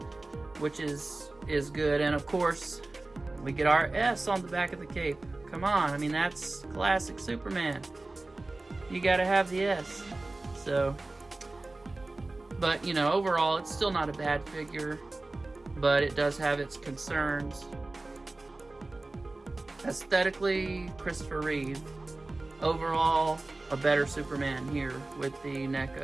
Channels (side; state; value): left; quieter; 3.1 dB